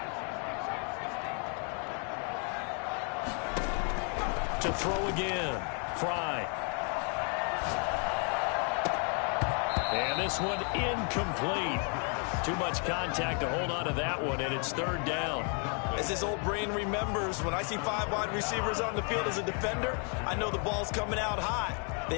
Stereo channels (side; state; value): right; quieter; 39.7 dB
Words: To throw again. Fry. And this one incomplete. Too much contact to hold on to that one, and it's 3rd down. As his old brain remembers, when I see 5 wide receivers on the field as a defender, I know the ball's coming out high.